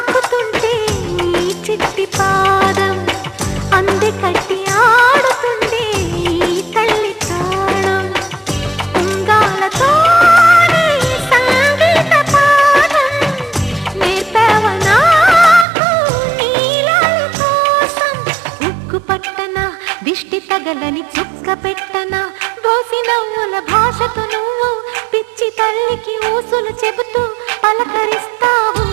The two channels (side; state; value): left; drops out; at 15.7 s